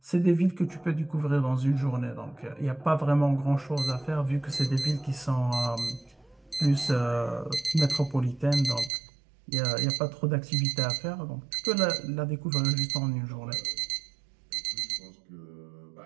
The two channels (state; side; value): drops out; left; at 8.9 s